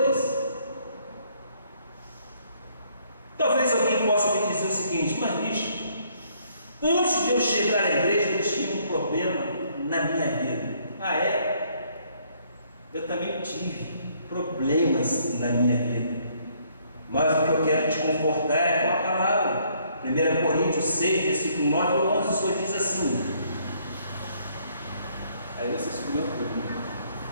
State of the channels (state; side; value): inverted; both; correlation -0.66